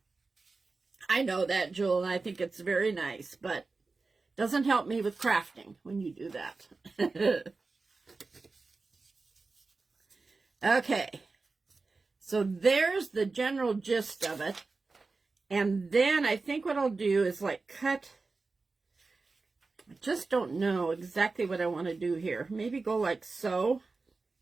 I know that, Jewel, and I think it's very nice, but doesn't help me with crafting when you do that. Okay. So there's the general gist of it. And then I think what I'll do is like cut. I just don't know exactly what I want to do here. Maybe go like so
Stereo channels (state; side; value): quieter; left; 3.9 dB